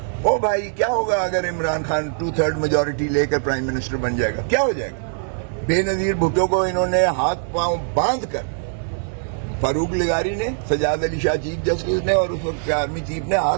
او بھائی, کیا ہوگا اگر عمران خان 2/3 میجورٹی لے کر پرائم منسٹر بن جائے گا؟ کیا ہو جائے گا؟ بے نظیر بھٹو کو انہوں نے ہاتھ پاؤں باندھ کر, فاروق لغاری نے, سجاد علی شاہ چیف جسٹس نے, اور اس وقت کے آرمی چیف نے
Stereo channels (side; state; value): left; silent; digital silence